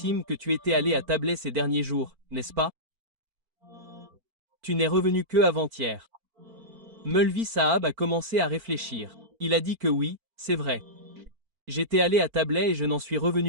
que tu étais allé à Tablet ces derniers jours, n'est-ce pas ? Tu n'es revenu que avant-hier. Mulvi Sahab a commencé à réfléchir. Il a dit que oui, c'est vrai. J'étais allé à Tablet et je n'en suis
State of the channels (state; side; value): late; left; 4.4 ms